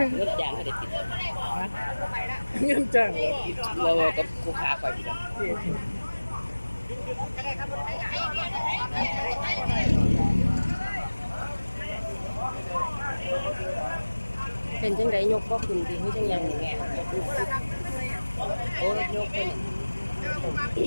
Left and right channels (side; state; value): both; inverted; correlation -1.00